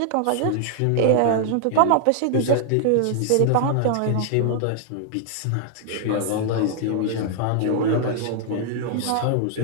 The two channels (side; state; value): both; different; correlation 0.00